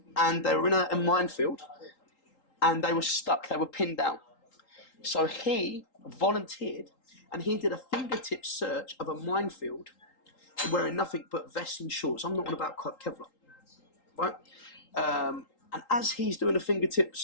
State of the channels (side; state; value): right; late; 3.8 ms